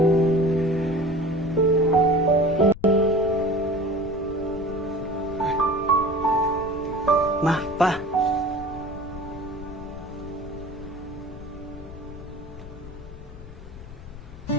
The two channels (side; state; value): left; noise; rumble, 14 dB below the sound